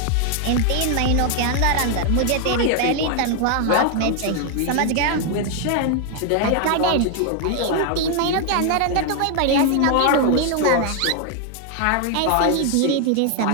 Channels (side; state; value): both; different; correlation 0.00